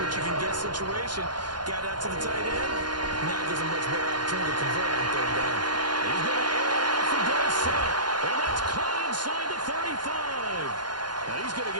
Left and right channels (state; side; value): late; left; 0.71 ms